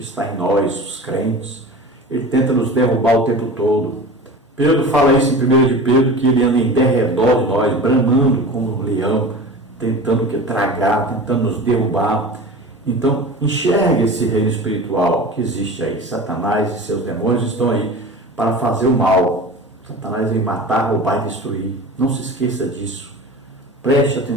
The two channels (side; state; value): both; normal; correlation 0.35